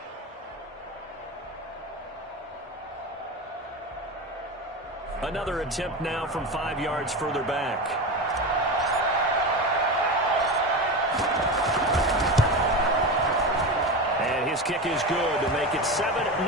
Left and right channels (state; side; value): normal; both; correlation 0.22